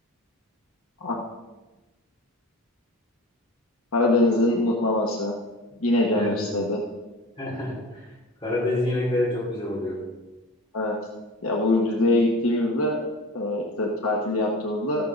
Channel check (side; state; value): both; normal; correlation 0.34